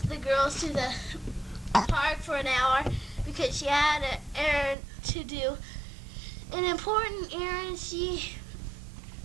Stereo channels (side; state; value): left; drops out; at 4.8 s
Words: the girls to the park for an hour because she had an errand to do, an important errand, she